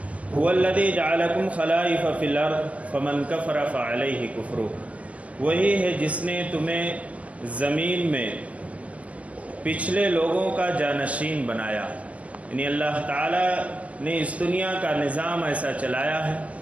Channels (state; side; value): late; left; 0.065 ms